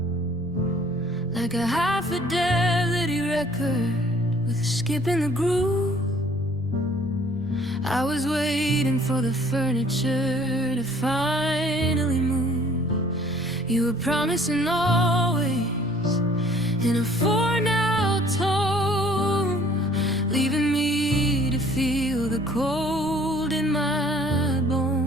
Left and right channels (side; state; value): both; normal; correlation 0.55